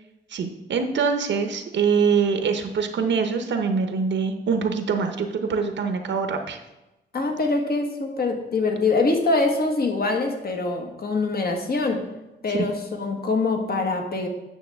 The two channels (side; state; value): both; normal; correlation 0.41